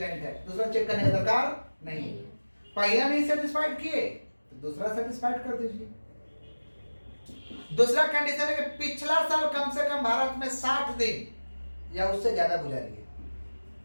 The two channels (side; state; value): both; inverted; correlation -1.00